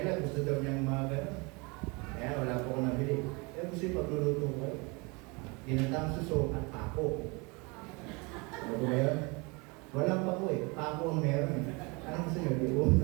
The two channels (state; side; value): quieter; left; 28.4 dB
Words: gusto daw niyang mga gano'n. Kaya wala po ko nabili. Kaya gusto yung pagluluto ko. Ginatang suso at pako. Ano ba yun? Walang pako eh. Pako ang meron eh. Anong gusto niyo? Diuon,